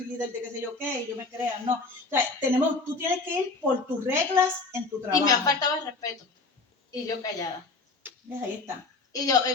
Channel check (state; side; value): quieter; right; 3.7 dB